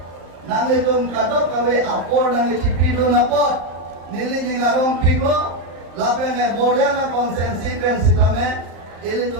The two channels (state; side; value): late; left; 35 ms